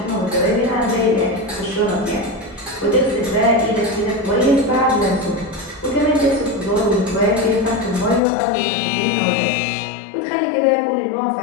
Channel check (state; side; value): drops out; right; at 8.2 s